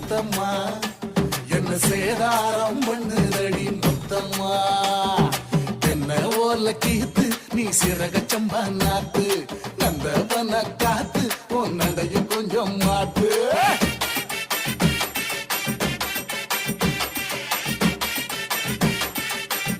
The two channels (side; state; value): both; identical; correlation 1.00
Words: என்ன சேதாரம் பண்ணுதடி முத்தம்மா. என்ன ஓர்ல கீத்து நீ சிறக சம்பா நாத்து, நந்தவன காத்து உன் நடையும் கொஞ்சம் மாத்து.